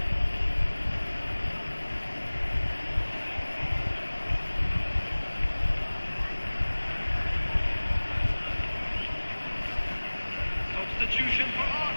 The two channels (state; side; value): inverted; both; correlation -1.00